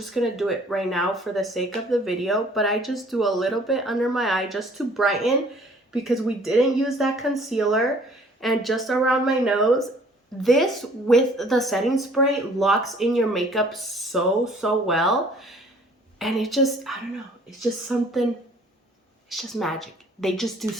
going to do it right now for the sake of the video. But I just do a little bit under my eye just to brighten, because we didn't use that concealer. And just around my nose. This with the setting spray locks in your makeup so well, and it just, I don't know, it's just something, it's just magic. They just do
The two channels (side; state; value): both; normal; correlation 0.55